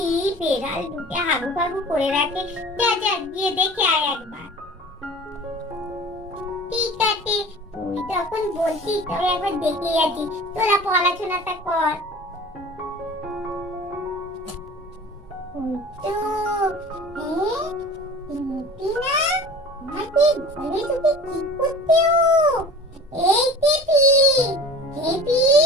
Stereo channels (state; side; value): normal; both; correlation 0.41